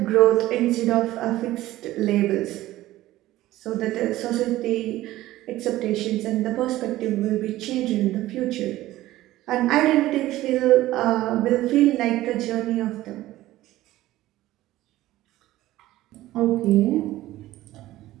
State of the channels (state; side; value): quieter; left; 15.8 dB